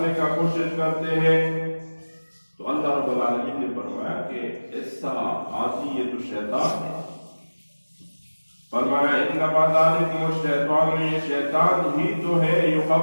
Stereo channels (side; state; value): both; inverted; correlation -1.00